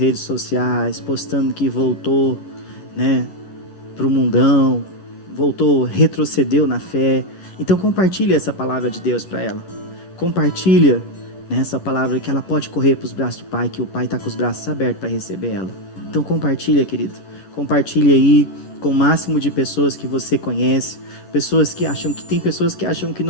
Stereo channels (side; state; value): right; late; 10 ms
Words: sociais, postando que voltou, né, para o mundão, voltou, retrocedeu na fé. Então compartilhe essa palavra de Deus para ela. Compartilha, né, essa palavra que ela pode correr para os braços do Pai, que o Pai está com os braços abertos para receber ela. Então compartilha, querido. Compartilha aí com o máximo de pessoas que você conhece. Tem pessoas que acham que